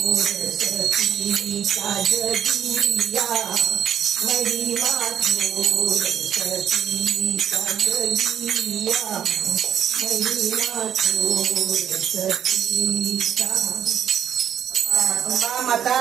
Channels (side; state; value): left; quieter; 9.4 dB